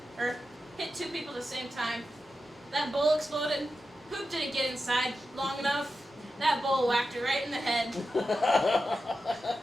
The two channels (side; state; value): both; normal; correlation 0.91